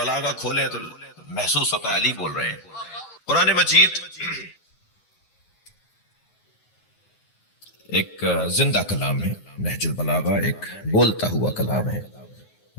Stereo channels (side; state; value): right; late; 9.5 ms